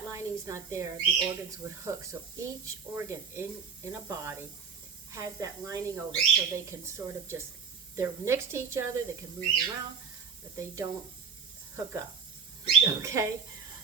lining is not there, the organs would hook. So each organ in a body has that lining over it, so they can sort of they're next to each other, they can move around, but they don't hook up. Okay?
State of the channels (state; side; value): quieter; left; 6.0 dB